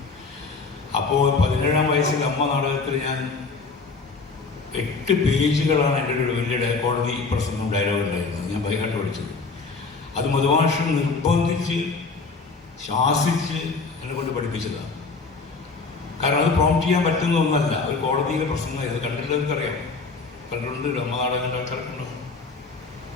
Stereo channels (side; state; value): right; quieter; 4.3 dB